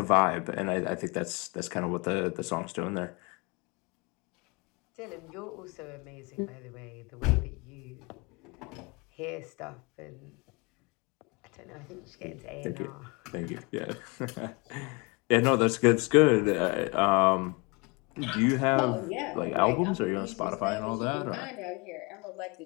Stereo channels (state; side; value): quieter; right; 28.5 dB